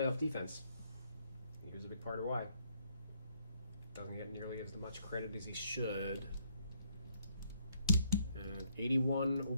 defense. He was a big part of why. Doesn't get nearly as much credit as he should. And 81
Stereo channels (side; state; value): both; inverted; correlation -0.69